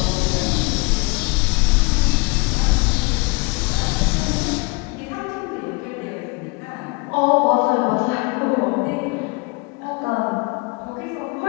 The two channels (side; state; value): right; quieter; 28.8 dB